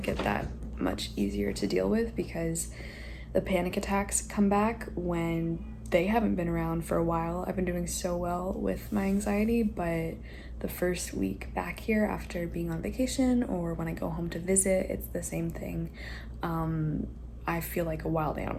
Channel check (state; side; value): identical; both; correlation 1.00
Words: it that much easier to deal with because the panic attacks come back when they haven't been around for a while. I've been doing so well with my anxiety, but the first week back here after being on vacation or when I go home to visit, it's the same thing. I feel like a wild